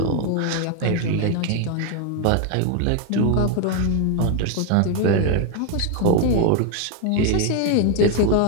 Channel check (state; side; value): different; both; correlation 0.01